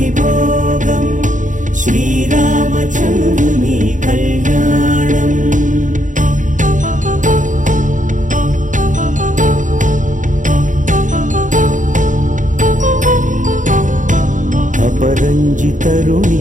శ్రీరామచంద్రుని కళ్యాణం అపరంజి తరుణి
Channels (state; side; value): late; left; 0.37 ms